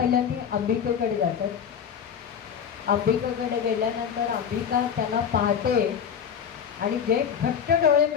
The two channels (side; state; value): right; quieter; 7.8 dB